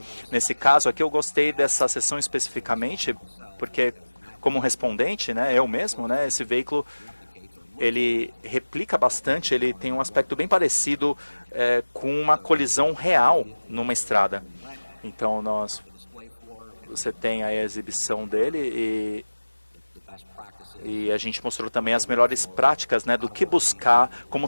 Nesse caso aqui, eu gostei dessa sessão especificamente, porque como respondente, né, eu mesmo, né, esse veículo ele replica bastante, ele tem um aspecto bem parecido com uma colisão real numa estrada. Então você tem aí a exibição dele e a gente mostrou também as melhores práticas, né, do que buscar, como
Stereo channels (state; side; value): inverted; both; correlation -1.00